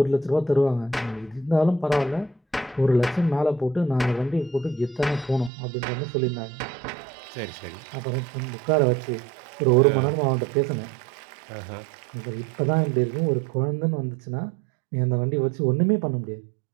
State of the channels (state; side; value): drops out; left; at 5.5 s